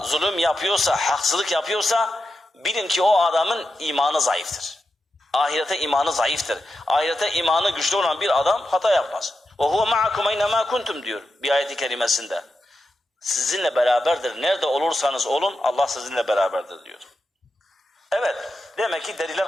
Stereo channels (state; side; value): normal; both; correlation 0.88